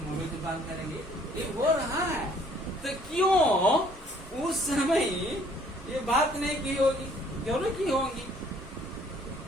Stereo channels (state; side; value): normal; both; correlation 0.60